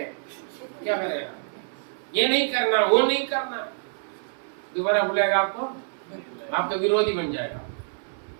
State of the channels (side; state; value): left; silent; 61 dB below the other